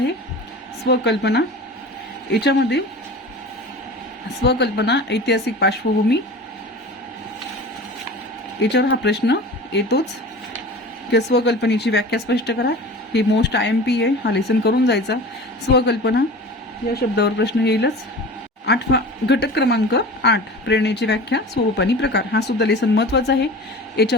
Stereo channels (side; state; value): both; normal; correlation 0.36